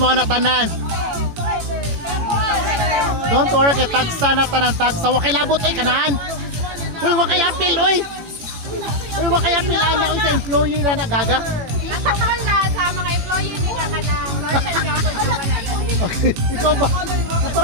na tanan. Don't worry kay tagsa na tanan tagsa. Wa kay labot ay kanaan. Uy, wa kay apil, uy. Uy, wa kay apil ana uy sa employee na nagaga. Natakal na sa mga employee niya kanang Northern Gabon na wala dali. Okay, ikaw ba?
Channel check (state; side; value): late; left; 18 ms